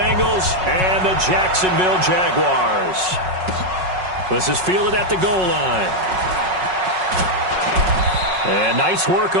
and the Jacksonville Jaguars. This is fielded at the goal line. And nice work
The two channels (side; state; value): left; late; 5.4 ms